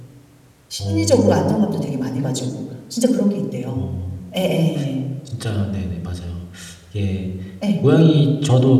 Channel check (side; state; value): both; identical; correlation 1.00